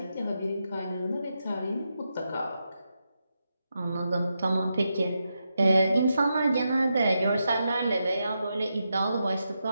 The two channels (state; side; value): inverted; both; correlation -0.86